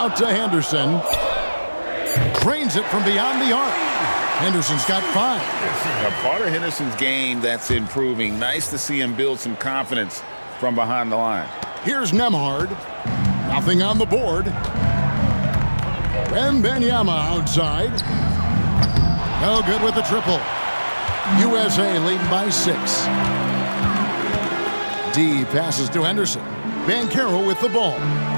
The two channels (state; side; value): inverted; both; correlation -1.00